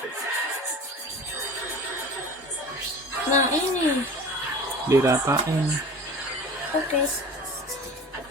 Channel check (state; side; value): normal; both; correlation 0.38